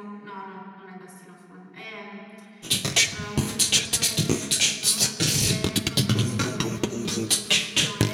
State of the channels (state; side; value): identical; both; correlation 1.00